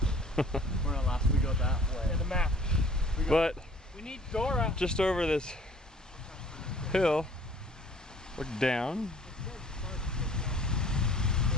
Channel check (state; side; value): normal; both; correlation 0.53